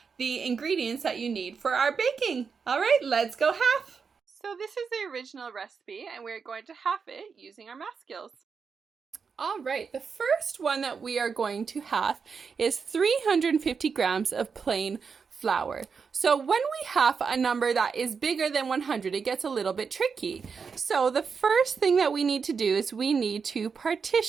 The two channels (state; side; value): quieter; left; 5.7 dB